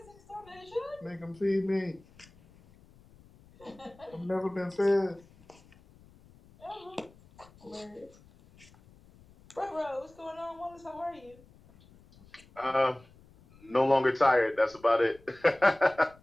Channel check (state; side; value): noise; left; rumble, 26 dB below the sound